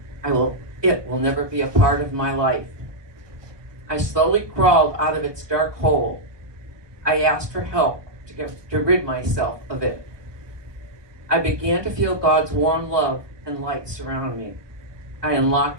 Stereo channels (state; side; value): late; left; 1.2 ms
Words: It will never be a part of my life. I slowly crawled out of its dark hole. I asked for help to rid myself of it. I began to feel God's warm love and light surround me. I